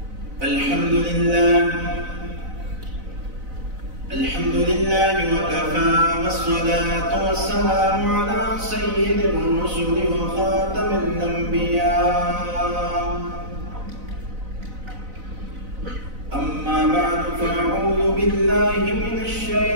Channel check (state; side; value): late; left; 4.0 ms